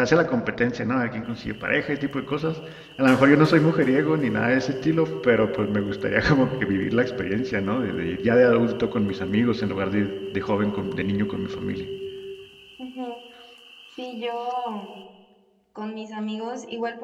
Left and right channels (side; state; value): both; identical; correlation 1.00